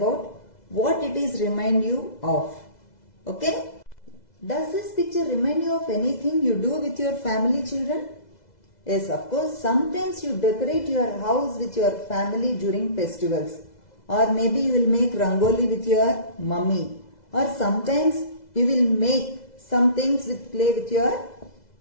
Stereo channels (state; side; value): late; right; 2.0 ms